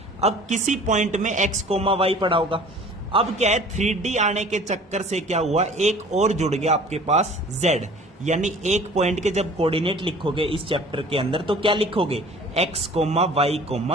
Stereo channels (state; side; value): normal; both; correlation 0.47